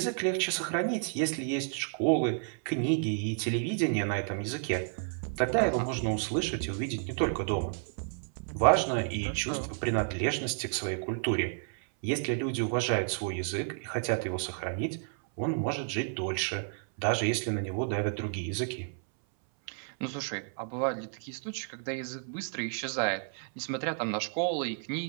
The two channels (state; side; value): silent; left; 57 dB below the other